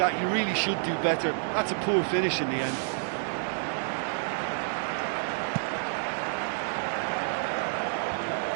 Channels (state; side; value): silent; left; digital silence